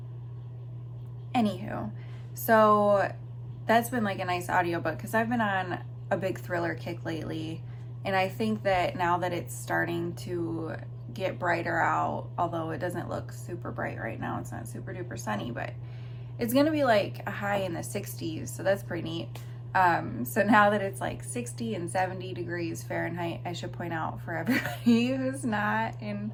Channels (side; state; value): both; identical; correlation 1.00